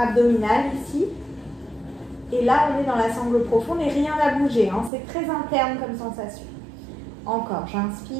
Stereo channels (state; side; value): drops out; left; at 4.9 s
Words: ici. Et là, on est dans la sangle profonde et rien n'a bougé. Hein. C'est très interne comme sensation. Encore,